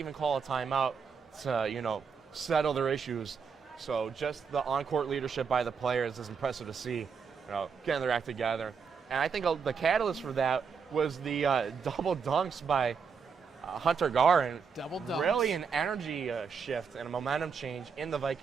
call a timeout to, settle their issues. So just the on-court leadership by the players is impressive to see, getting their act together. And I think the catalyst for that was the double dunks by Hunter Garin. Double dunks. Really an energy shift and a momentum change in the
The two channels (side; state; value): left; quieter; 6.0 dB